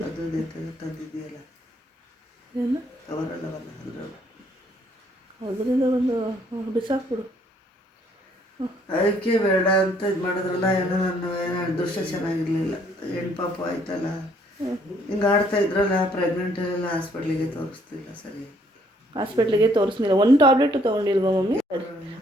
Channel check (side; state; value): both; normal; correlation 0.65